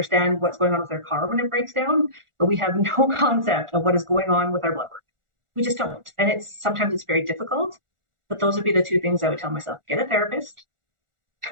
what's going on with their car when it breaks down, but we have no concept of what is going on with our blood work. We just don't. And sometimes it's very difficult, but those would be the two things I would tell myself. Get a therapist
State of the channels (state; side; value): late; left; 1.4 ms